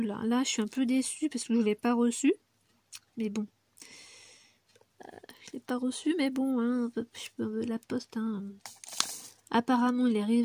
là. Là, je suis un peu déçue parce que je ne l'ai pas reçu. Mais bon. Je l'ai pas reçu, mais bon, hein, la poste, hein. Apparemment, il est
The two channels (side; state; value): both; identical; correlation 1.00